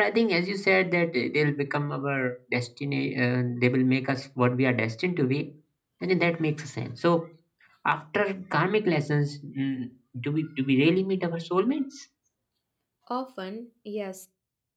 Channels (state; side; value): identical; both; correlation 1.00